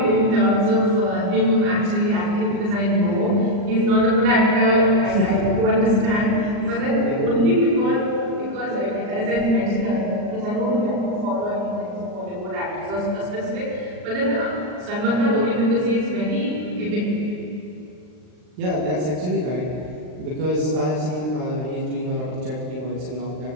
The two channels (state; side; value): late; left; 39 ms